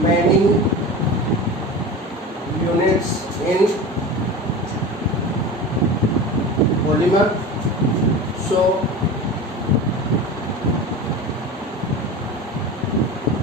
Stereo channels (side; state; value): both; normal; correlation 0.31